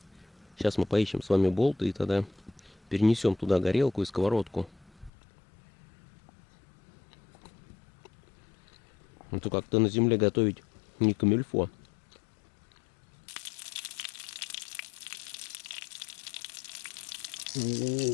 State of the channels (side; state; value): right; drops out; at 5.1 s